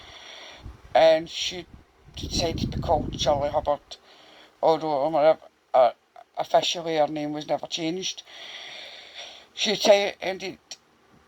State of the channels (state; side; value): identical; both; correlation 1.00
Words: and she decided to be called Shirley Hubbard, although officially her name was never changed. She attended